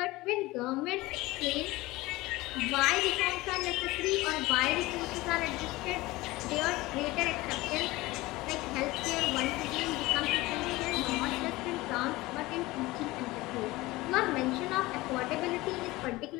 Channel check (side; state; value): right; quieter; 20.0 dB